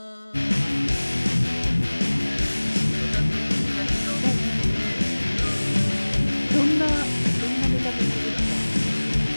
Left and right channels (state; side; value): inverted; both; correlation -1.00